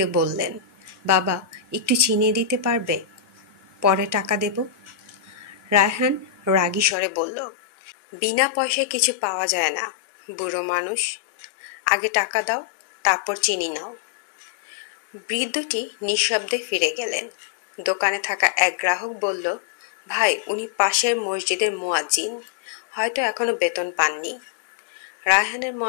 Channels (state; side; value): drops out; right; at 7.0 s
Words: বললেন, বাবা, একটু চিনি দিতে পারবে? পরে টাকা দেব। রায়হান রাগী স্বরে বলল, বিনা পয়সায় কিছু পাওয়া যায় না, বুড়ো মানুষ। আগে টাকা দাও, তারপর চিনি নাও। বৃদ্ধটি নিঃশব্দে ফিরে গেলেন। দোকানে থাকা এক গ্রাহক বলল, ভাই, উনি পাশের মসজিদের মুয়াজ্জিন, হয়তো এখনো বেতন পাননি। রায়হানের